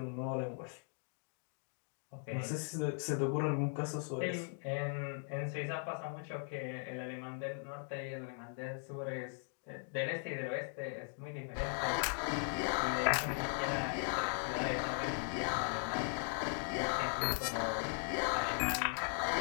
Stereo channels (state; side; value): silent; right; 52 dB below the other